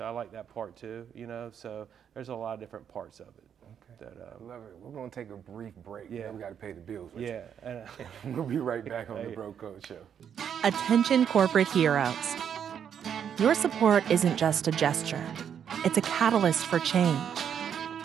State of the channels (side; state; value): left; quieter; 8.3 dB